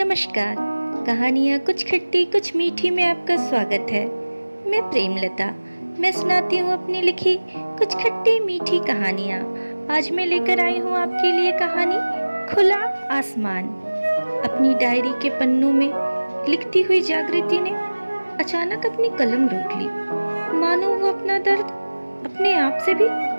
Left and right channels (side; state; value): both; inverted; correlation -1.00